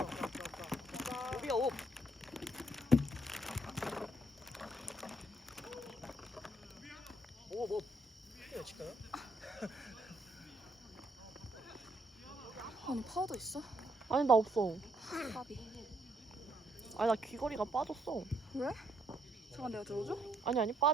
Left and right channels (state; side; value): normal; both; correlation 0.72